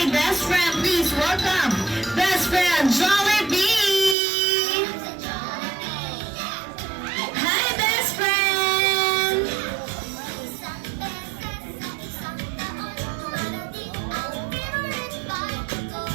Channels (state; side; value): drops out; left; at 4.2 s